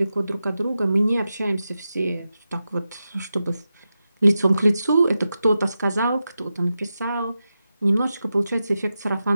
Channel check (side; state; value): both; inverted; correlation -0.91